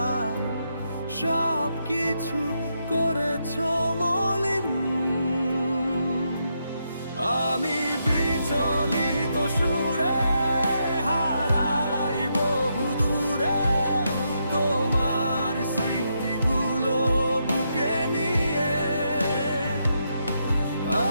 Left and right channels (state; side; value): inverted; both; correlation -0.81